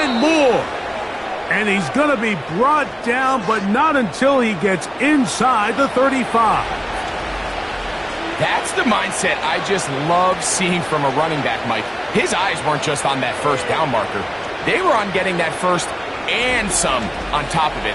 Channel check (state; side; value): identical; both; correlation 1.00